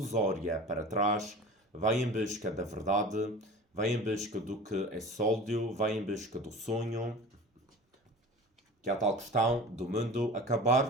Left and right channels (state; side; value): normal; both; correlation 0.37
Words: para trás, vai em busca da verdade, vai em busca do que é sólido, vai em busca do sonho, que é a tal questão do mundo,